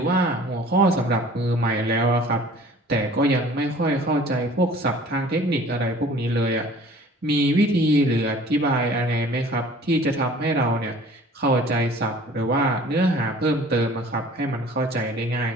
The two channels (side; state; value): both; normal; correlation 0.48